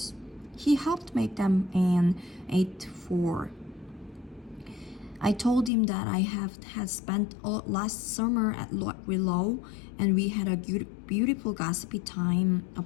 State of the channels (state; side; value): drops out; right; at 5.7 s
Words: He helped make them and ate 4. I told him that I had spent all last summer at Willow, and we had a beautiful gossipy time